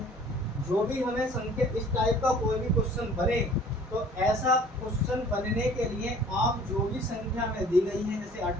जो भी हमें संख्या इस टाइप का कोई भी क्वेश्चन बने, तो ऐसा क्वेश्चन बनने के लिए आप जो भी संख्या में दी गई है, जैसे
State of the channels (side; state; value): both; normal; correlation 0.51